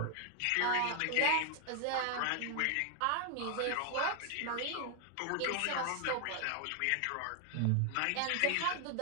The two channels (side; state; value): both; different; correlation 0.00